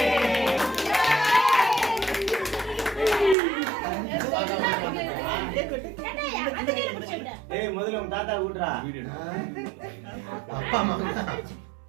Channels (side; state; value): left; drops out; at 3.4 s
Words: ஏய் முதல்ல உன் தாத்தா கூட்றா அப்பா அம்மா